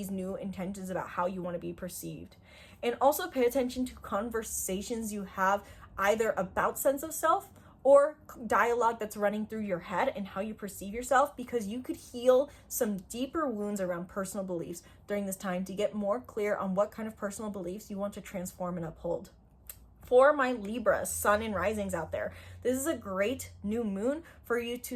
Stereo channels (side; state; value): both; identical; correlation 1.00